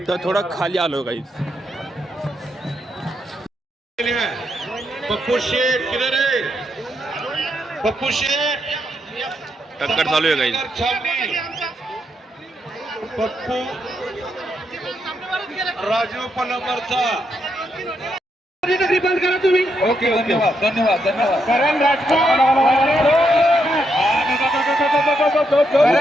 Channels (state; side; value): normal; both; correlation 0.80